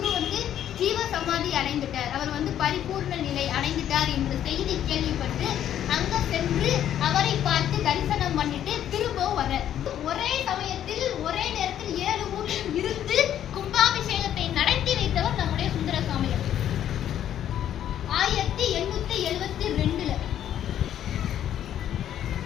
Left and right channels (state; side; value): quieter; right; 10.7 dB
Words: வந்து ஜீவ சமாதி அடைந்துட்டார். அவர் வந்து பரிபூர்ண நிலை அடைந்துட்டார் என்ற செய்தி கேள்விப்பட்டு அங்க சென்று அவரை பார்த்து தரிசனம் பண்ணிட்டு திரும்பவும் வர ஒரே சமயத்தில் ஒரே நேரத்தில் 7 ஊரில் இருந்து கும்பாபிஷேகத்தை நடத்தி வைத்தவர் நம்முடைய சுந்தர சுவாமிகள்.